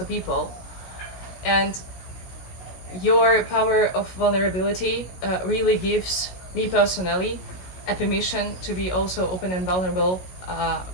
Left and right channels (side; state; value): right; late; 16 ms